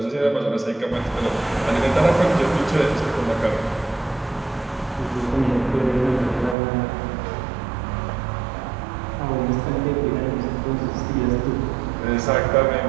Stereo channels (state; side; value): drops out; left; at 6.6 s